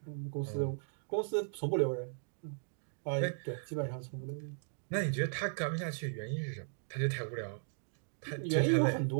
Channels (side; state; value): left; silent; digital silence